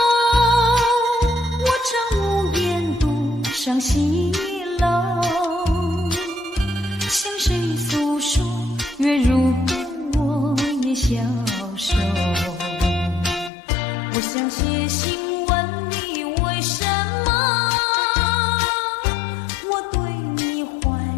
我常无言独上西楼，向谁诉说？月如歌，我也消瘦。我想写信问你，为什么我对你怀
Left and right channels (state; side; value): drops out; right; at 13.5 s